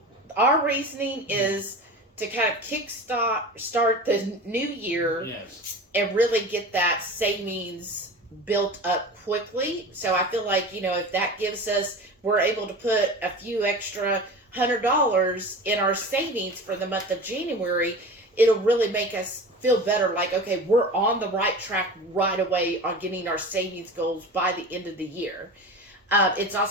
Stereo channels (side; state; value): both; normal; correlation 0.33